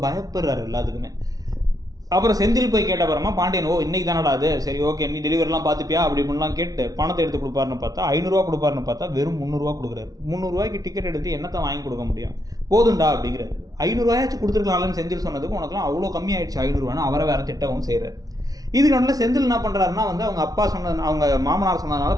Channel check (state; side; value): late; left; 0.18 ms